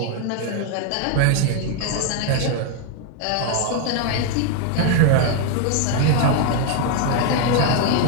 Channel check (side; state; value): both; different; correlation 0.01